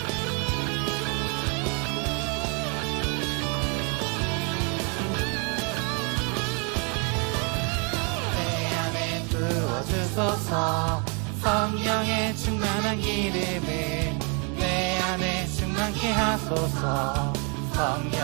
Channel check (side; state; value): left; quieter; 35.4 dB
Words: 내 안에 부어주소서 성령의 충만한 기름을 내 안에 충만케 하소서